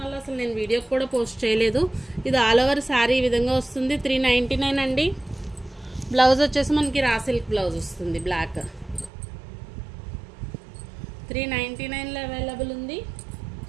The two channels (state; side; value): drops out; left; at 9.1 s